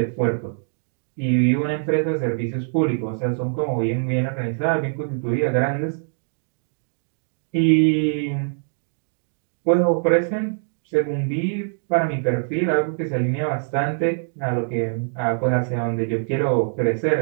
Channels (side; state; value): left; silent; digital silence